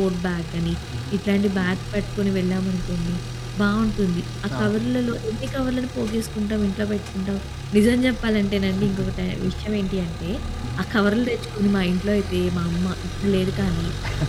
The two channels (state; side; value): identical; both; correlation 1.00